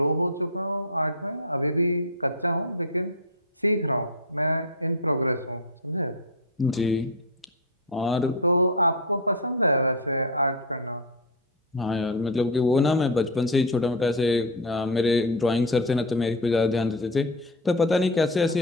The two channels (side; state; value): both; normal; correlation 0.10